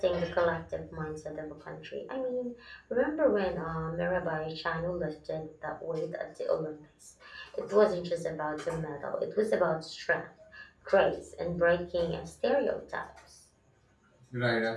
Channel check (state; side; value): identical; both; correlation 1.00